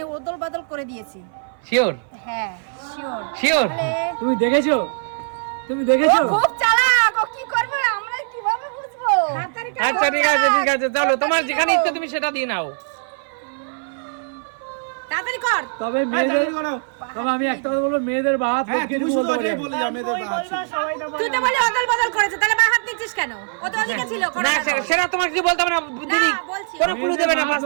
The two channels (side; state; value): left; silent; 59 dB below the other